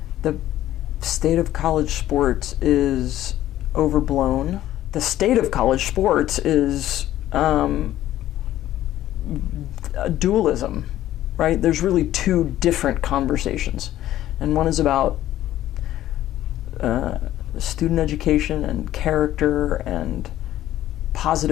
state of college sports is overblown. The state of college sports is dualism, right? There's really two different conversations. And one is about student education and character and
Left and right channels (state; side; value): quieter; right; 13.5 dB